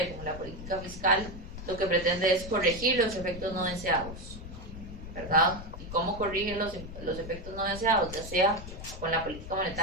como la política fiscal lo que pretende es corregir los efectos no deseados, ¿verdad? ¿Y cómo corrigen los efectos no deseados? Ya sea con la política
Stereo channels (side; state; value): left; noise; rumble, 11 dB below the sound